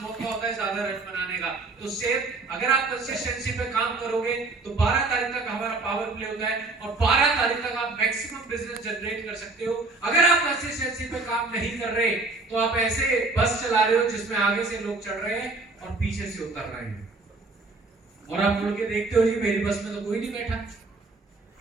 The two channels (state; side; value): quieter; left; 3.6 dB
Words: मौका होता है ज्यादा रन बनाने का। तो सेम अगर आप कंसिस्टेंसी पे काम करोगे तो 12 तारीख तक हमारा पावर प्ले होता है और 12 तारीख तक आप मैक्सिमम बिजनेस जनरेट कर सकते हो। अगर आप कंसिस्टेंसी काम नहीं कर रहे तो आप ऐसे बस चला रहे हो जिसमें आगे से लोग चढ़ रहे हैं और पीछे से उतर रहे हैं, और आप मुड़ के देखते हो जी मेरी बस में तो कोई नहीं बैठा,